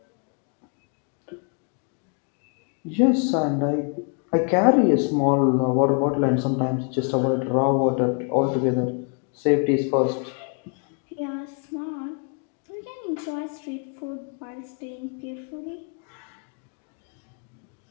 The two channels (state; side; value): quieter; right; 39.8 dB